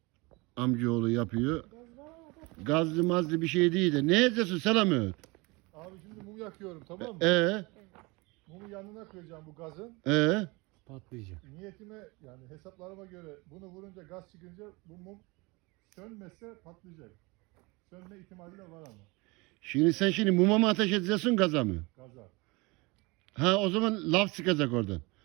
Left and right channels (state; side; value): quieter; left; 25.6 dB